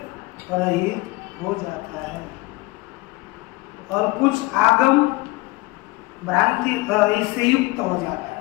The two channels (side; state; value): right; quieter; 21.8 dB